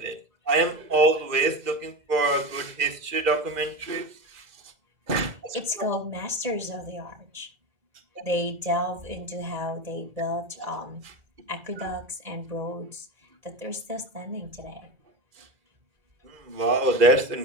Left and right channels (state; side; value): late; left; 2.0 ms